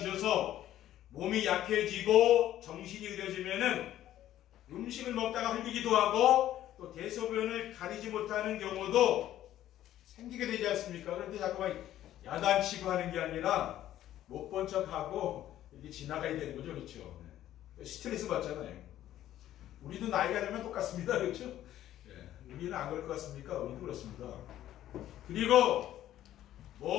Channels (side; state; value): right; quieter; 12.7 dB